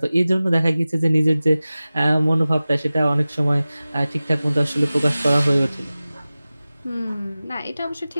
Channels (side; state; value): both; inverted; correlation -0.97